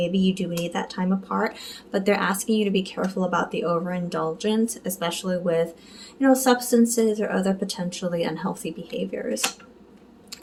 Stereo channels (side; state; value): both; identical; correlation 1.00